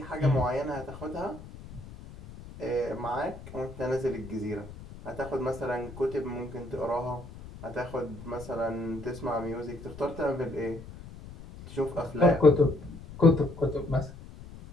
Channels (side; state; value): left; noise; rumble, 15 dB below the sound